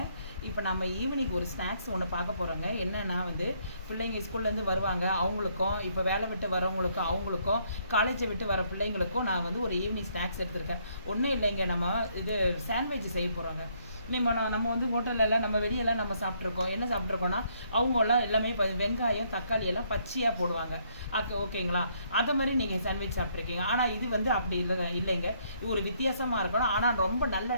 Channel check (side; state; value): both; inverted; correlation -0.69